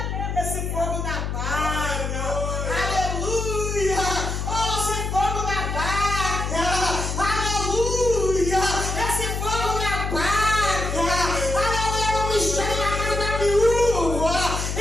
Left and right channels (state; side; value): noise; left; hum, 2 dB below the sound